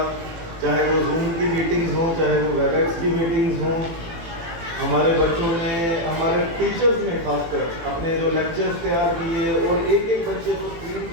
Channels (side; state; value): left; late; 18 ms